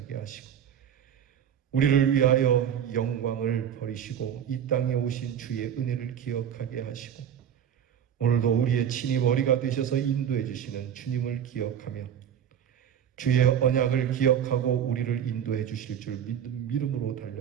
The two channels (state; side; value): quieter; left; 9.1 dB